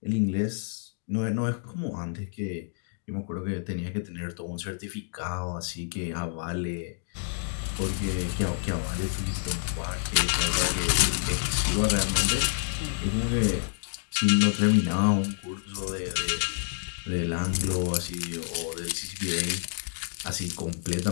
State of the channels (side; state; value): right; silent; digital silence